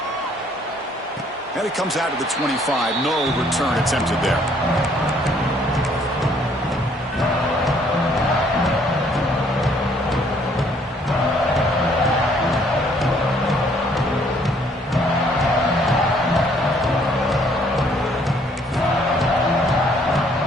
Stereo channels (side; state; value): both; normal; correlation 0.63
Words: And it comes out of the 25. No return attempted there.